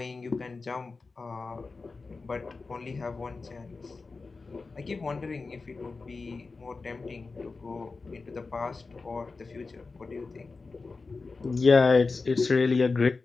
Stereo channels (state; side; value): quieter; right; 4.1 dB